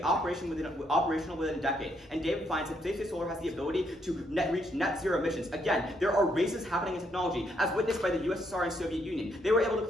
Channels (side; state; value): both; normal; correlation 0.74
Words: operational within a decade. And David finds that space-based solar has the ability to reach net zero emissions. Again, there are races happening in technology, as witnessed by the USSR and Soviet Union. They were able to